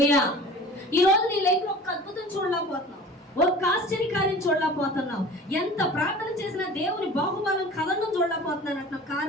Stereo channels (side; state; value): both; normal; correlation 0.41